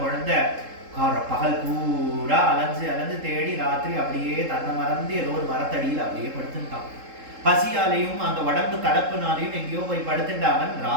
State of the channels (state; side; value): late; left; 3.7 ms